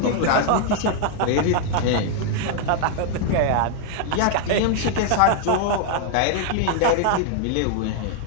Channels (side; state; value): both; different; correlation 0.00